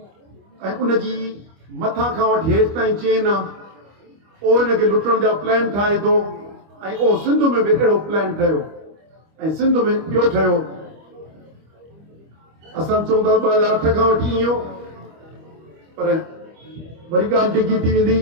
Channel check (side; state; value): left; late; 25 ms